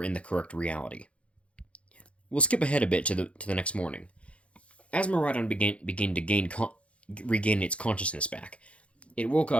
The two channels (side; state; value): right; late; 0.062 ms